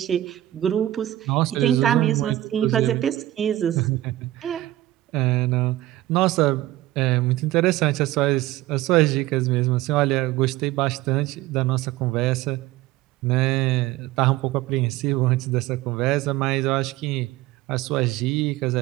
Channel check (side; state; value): left; quieter; 15.3 dB